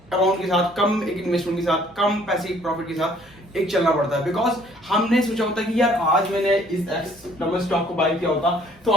अमाउंट के साथ, कम एक इन्वेस्टमेंट के साथ, कम पैसे प्रॉफिट के साथ एक चलना पड़ता है। बिकॉज हमने सोचा होता है कि यार आज मैंने इस एक्स नंबर स्टॉक को बाय किया होता तो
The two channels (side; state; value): both; normal; correlation 0.59